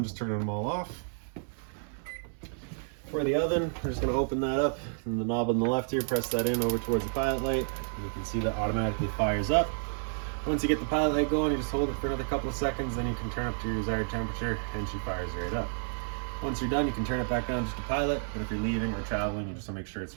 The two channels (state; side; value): silent; left; 57 dB below the other